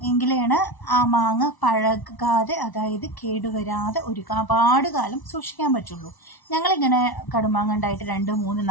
എങ്കിലാണ് ആ മാങ്ങ പഴകാതെ, അതായത് കേടുവരാതെ ഒരുപാട് കാലം സൂക്ഷിക്കാൻ പറ്റുള്ളൂ. ഞങ്ങളിങ്ങനെ കടുമാങ്ങ ഉണ്ടായിട്ട് 2, 3,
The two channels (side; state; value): right; late; 1.0 ms